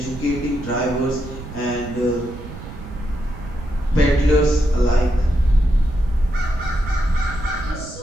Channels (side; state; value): right; noise; rumble, 13 dB below the sound